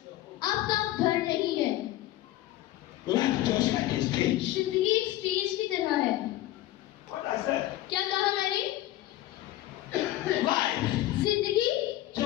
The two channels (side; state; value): right; quieter; 15.3 dB